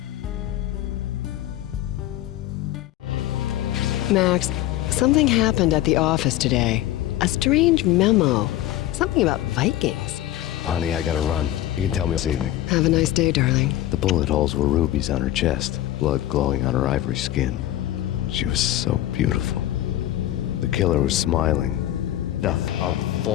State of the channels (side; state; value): right; quieter; 13.9 dB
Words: Max, something happened at the office today. A strange memo. Something about Vikings. Honey, I gotta run. You can tell me this evening. Have a nice day, darling. The bullet holes were rubies on her chest, blood glowing on her ivory skin. She was so beautiful. The killer was smiling. Death of